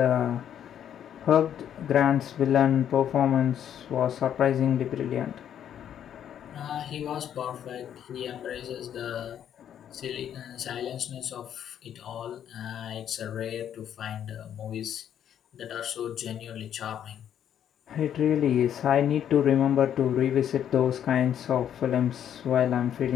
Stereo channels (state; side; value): quieter; right; 9.7 dB